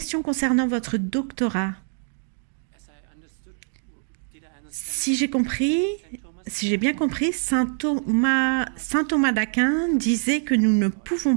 concernant votre doctorat. Si j'ai bien compris, saint Thomas d'Aquin disait que nous ne pouvons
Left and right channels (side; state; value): left; silent; 61 dB below the other